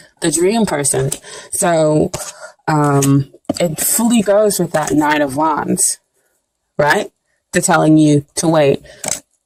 The dream person. So, it fully goes with that Nine of Wands, right? To telling you to wait.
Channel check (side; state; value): both; identical; correlation 1.00